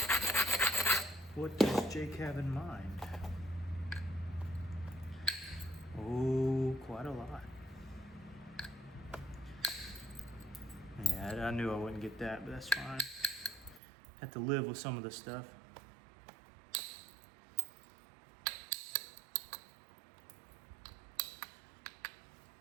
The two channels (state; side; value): drops out; left; at 13.8 s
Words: What does Jake have in mind? Oh, quite a lot. Yeah, I knew I wouldn't get that, but that's fine. Have to live with some of the stuff.